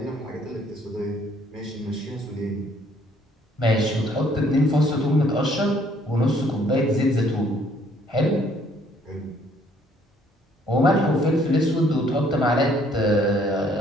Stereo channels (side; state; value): both; normal; correlation 0.63